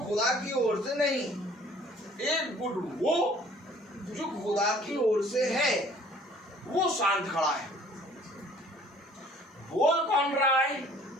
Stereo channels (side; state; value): both; normal; correlation 0.54